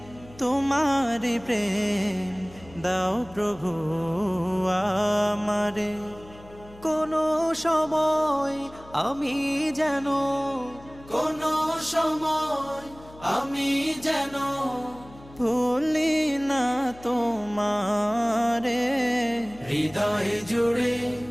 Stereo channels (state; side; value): noise; left; hum, 21 dB below the sound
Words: তোমারি প্রেম দাও প্রভু আমারে। কোনো সময় আমি যেন ভুলি না তোমারে। হৃদয় জুড়ে